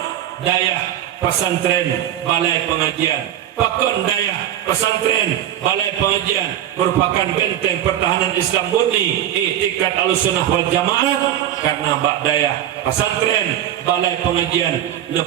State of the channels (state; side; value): quieter; left; 11.5 dB